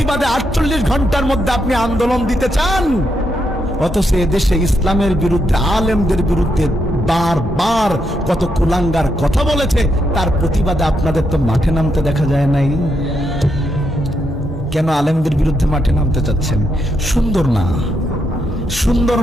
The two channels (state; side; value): normal; both; correlation 0.80